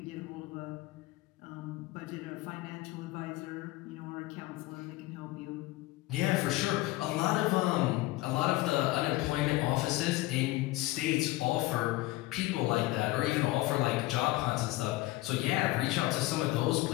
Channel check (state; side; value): quieter; right; 18.7 dB